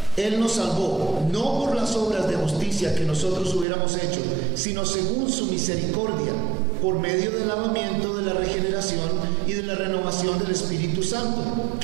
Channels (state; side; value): drops out; left; at 3.7 s